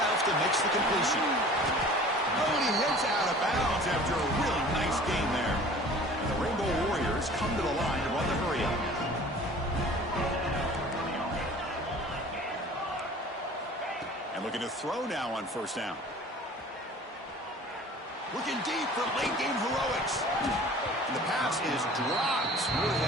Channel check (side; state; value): both; normal; correlation 0.46